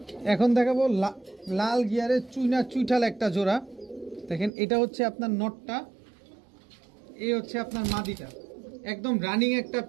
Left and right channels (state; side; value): drops out; left; at 4.5 s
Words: এখন দেখাবো লাল গিয়ারের চুইনা চুইঠাল একটা জোড়া, দেখেন এটা হচ্ছে আপনার নটটা, এই হচ্ছে আপনার মাদিটা, একদম রানিং একটা